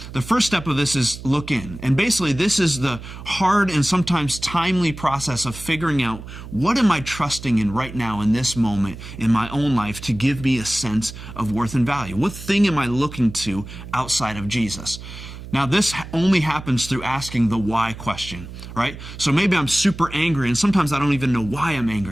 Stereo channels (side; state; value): right; noise; hum, 13 dB below the sound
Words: The first step of this is look in. And basically, this is the hard and sometimes timely process of figuring out what am I trusting in right now in this moment in my own life to give me a sense of worth and value? What thing am I looking to outside of Jesus? Now, this only happens through asking the why question, right? So maybe I'm super angry, and sometimes I don't even know why I'm